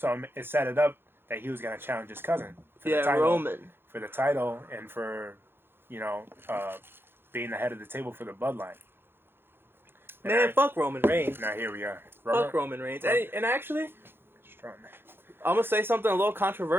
it set it up that he was going to challenge his cousin. For the title, Roman. For the title, and for, being the head of the table for the bloodline. Man, fuck Roman Reigns. Now here we are. Fuck Roman Reigns. And actually, strong. I'm going to say something a little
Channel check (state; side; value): late; left; 0.10 ms